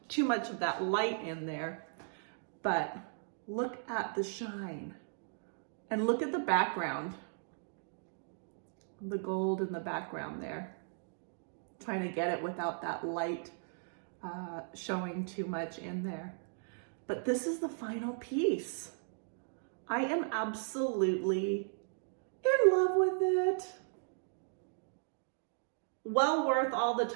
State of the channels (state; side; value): silent; left; digital silence